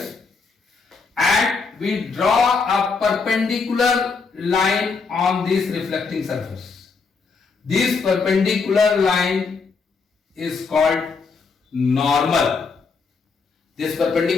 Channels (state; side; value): quieter; right; 4.7 dB